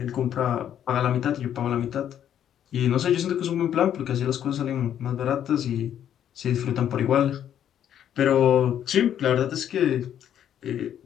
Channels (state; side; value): quieter; right; 10.1 dB